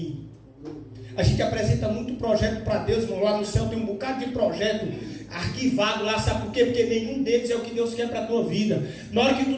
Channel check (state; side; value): identical; both; correlation 1.00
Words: A gente apresenta muito projeto para Deus, irmão. Lá no céu tem um bocado de projeto arquivado lá, sabe por quê? Porque nenhum deles é o que Deus quer para a tua vida. Na hora que tu